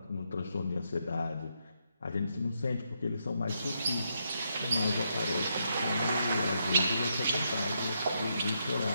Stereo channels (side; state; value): both; inverted; correlation -0.79